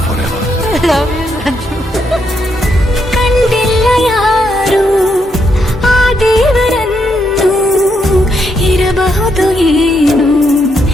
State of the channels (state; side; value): normal; both; correlation 0.78